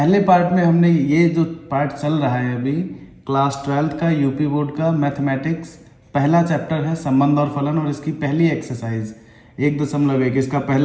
पार्ट में हमने ये जो पार्ट चल रहा है अभी क्लास 12th का यूपी बोर्ड का मैथमेटिक्स, पहला चैप्टर है संबंध और फलन और इसकी पहली एक्सरसाइज 1.1। इसका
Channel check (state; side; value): identical; both; correlation 1.00